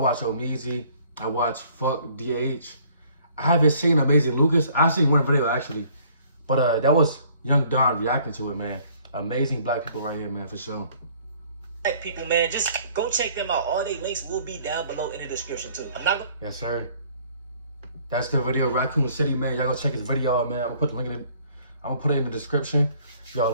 Omeezy. I watch Fuck DH. I haven't seen Amazing Lucas. I seen one video actually, but that was Young Don reacting to it, man. Amazing black people right here, man, for sure. Black people, man, just go check them out. All their links will be down below in the description too. I'm not gonna. Yes, sir. That's the video, Raccoon City, man. Y'all go check his video out, man. I'm gonna put the link in it. I'm gonna put it in the description. Y'all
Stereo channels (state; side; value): inverted; both; correlation -0.58